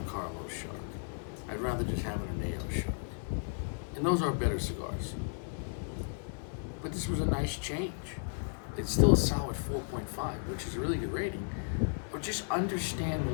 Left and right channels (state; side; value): silent; right; digital silence